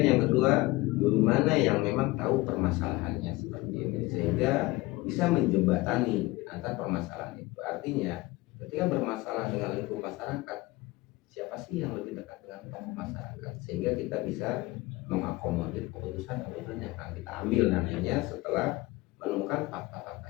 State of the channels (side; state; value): right; quieter; 20.5 dB